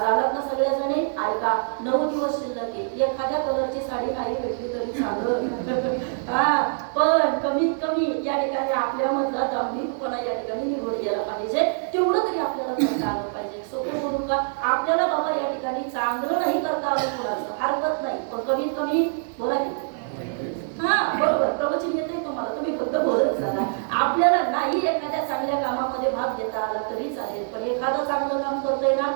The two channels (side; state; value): left; silent; digital silence